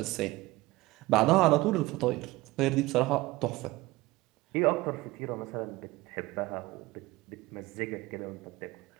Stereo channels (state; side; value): quieter; left; 19.9 dB